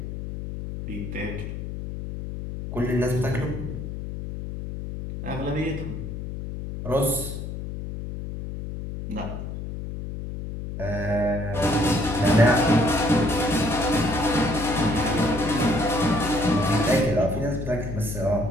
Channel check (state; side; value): noise; left; hum, 7 dB below the sound